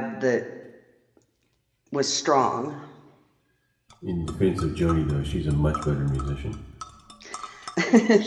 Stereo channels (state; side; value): identical; both; correlation 1.00